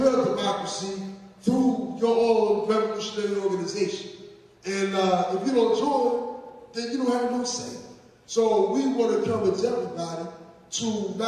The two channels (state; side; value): identical; both; correlation 1.00